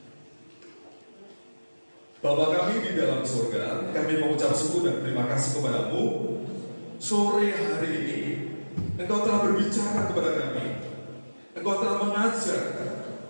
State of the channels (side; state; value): both; inverted; correlation -1.00